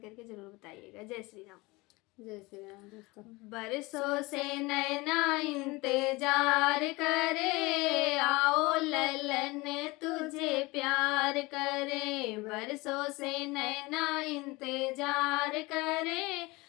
करके ज़रूर बताइएगा। जय श्री राम। जय श्री राम दोस्तों। बरसों से नैना इंतजार करे, आओ ललन तुझे प्यार करे। बरसों से नैना इंतजार करे,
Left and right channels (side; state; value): right; quieter; 23.2 dB